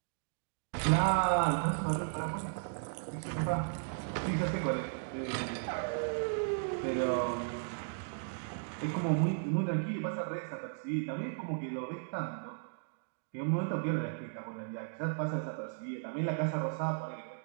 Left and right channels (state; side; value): silent; left; digital silence